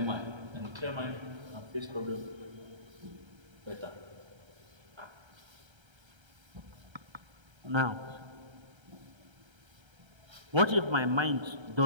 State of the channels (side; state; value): left; late; 1.3 ms